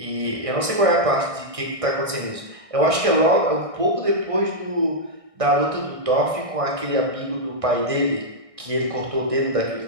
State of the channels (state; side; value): late; left; 1.6 ms